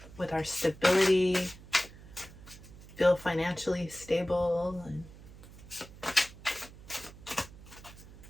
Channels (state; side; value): noise; right; hum, 18 dB below the sound